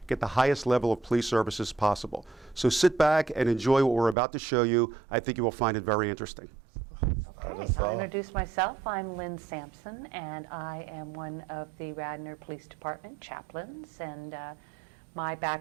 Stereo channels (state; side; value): drops out; left; at 4.2 s